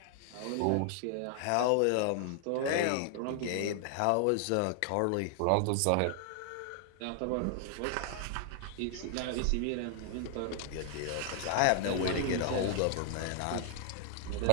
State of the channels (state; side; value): different; both; correlation 0.00